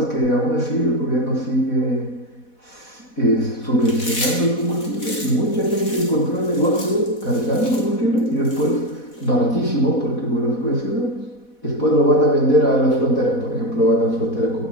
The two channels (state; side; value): late; right; 4.1 ms